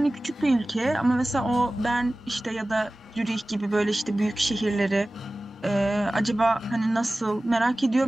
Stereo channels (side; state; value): both; normal; correlation 0.97